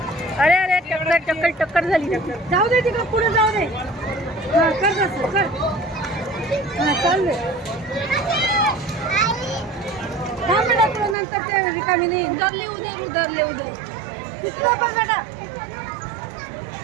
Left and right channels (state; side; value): drops out; left; at 11.2 s